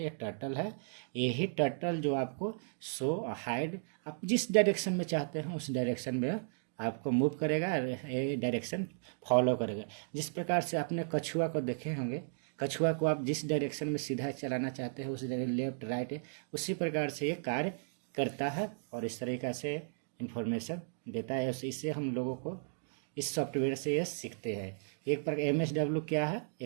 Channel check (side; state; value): left; silent; digital silence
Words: ये टर्टल है। यही टर्टल जो आपको शो हाइड, आप जिस डायरेक्शन में चाहते हैं उस डायरेक्शन में आपको मूव करेगा, ये डायरेक्शन फॉलो करेगा। जिस प्रकार से आपने कछुआ को देखे होंगे, कछुआ को आप जिस डायरेक्शन में सीधा चलाना चाहते हैं उस लेफ्ट राइट, उसी प्रकार से ये कार्य करता है और इस तरीक़ा से इन्फॉर्मेशन देता है। इससे हम लोगों को इस सॉफ्टवेयर से ये सीखते हैं। एक प्रकार MSW क्या है,